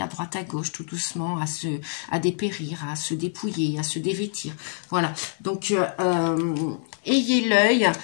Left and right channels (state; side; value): silent; right; 62 dB below the other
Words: à droite à gauche, tout doucement, à dépérir, à se dépouiller, à se dévêtir. Voilà, donc ayez l'œil.